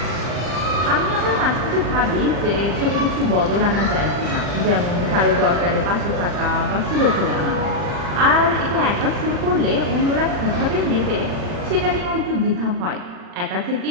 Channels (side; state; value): left; late; 40 ms